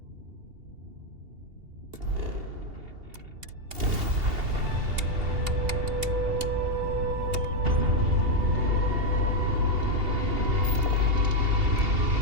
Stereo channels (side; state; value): left; late; 2.8 ms